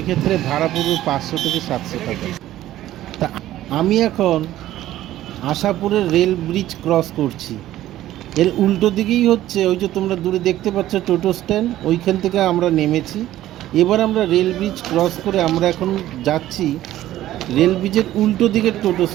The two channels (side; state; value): left; quieter; 14.0 dB